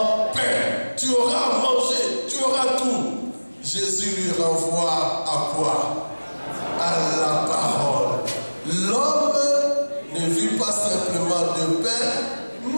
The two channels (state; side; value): inverted; both; correlation -1.00